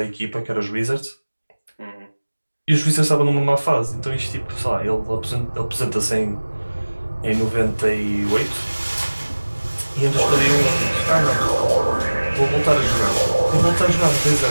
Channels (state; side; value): inverted; both; correlation -1.00